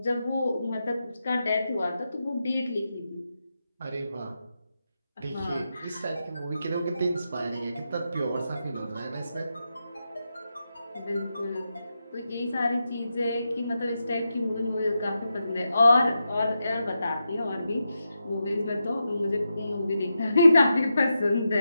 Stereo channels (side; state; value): both; inverted; correlation -0.87